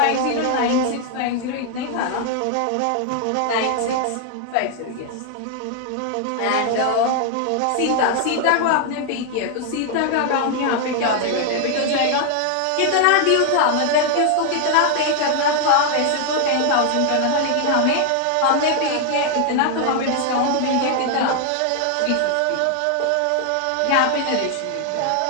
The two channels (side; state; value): both; different; correlation 0.00